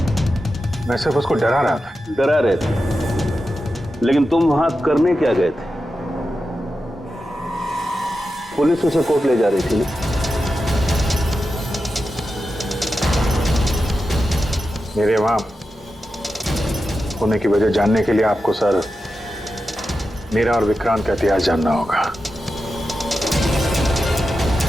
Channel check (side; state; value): both; normal; correlation 0.90